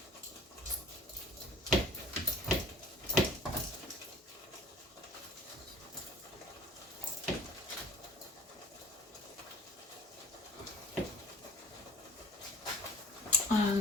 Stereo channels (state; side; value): normal; both; correlation 0.47